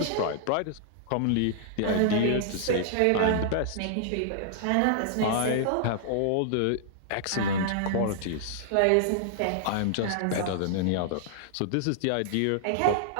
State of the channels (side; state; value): both; different; correlation -0.01